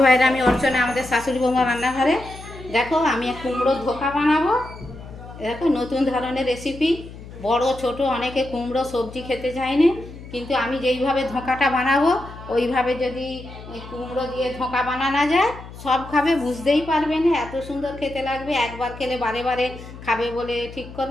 ভাইরা, আমি অর্চনা, আমাদের শাশুড়ি বৌমা রান্নাঘরে। দেখো আমি কুমড়োর ধোকা বানাবো। দেখো নতুন ধরনের রেসিপি। বড় ছোট অনেকে কুমড়ো সবজি খেতে চায় না, কিন্তু আমি যেইভাবে ধোকাটা বানাবো ওইভাবে যদি কুমড়ো দিয়ে ধোকা বানানো যায় সব খাবে, বুঝতেই পারবে না, এত সুন্দর খেতে লাগবে। একবার খেলে বারে বারে খাবে বলে ঠিক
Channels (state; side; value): noise; left; hum, 15 dB below the sound